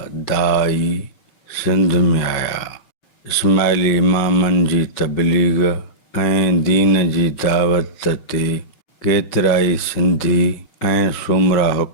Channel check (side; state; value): right; late; 6.1 ms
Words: दाई सिंध में आया। इस्माइली इमामनि जी तबलीग ऐं दीन जी दावत ते केतिराई सिंधी ऐं सुमरा